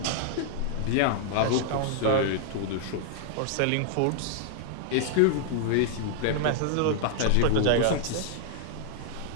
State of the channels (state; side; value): different; both; correlation -0.01